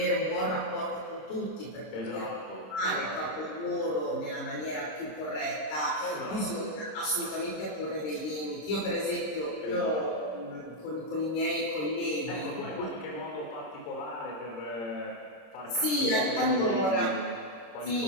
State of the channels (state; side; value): late; right; 26 ms